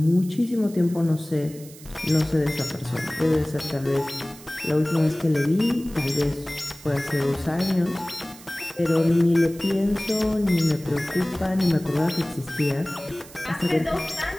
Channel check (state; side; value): noise; right; hiss, 19 dB below the sound